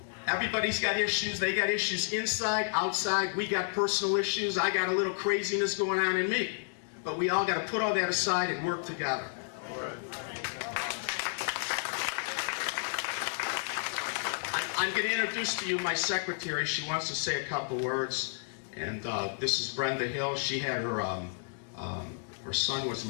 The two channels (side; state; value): right; silent; digital silence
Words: Everybody's got issues. They got issues inside, outside. We got personal issues. I got a little craziness going on in me. But we all got to put all that aside and work together. I'm going to introduce to you my secretary. She wants to say a couple words. And this is Brenda Hill. She had her son was